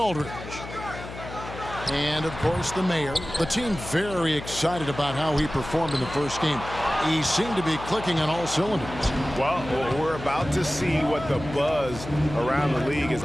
And, of course, the mayor. The team very excited about how he performed in the first game. He seemed to be clicking on all cylinders. Well, we're about to see what the buzz around the league is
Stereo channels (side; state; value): left; noise; hum, 11 dB below the sound